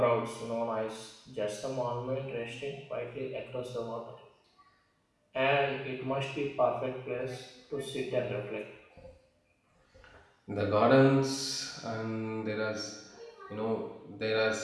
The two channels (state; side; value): identical; both; correlation 1.00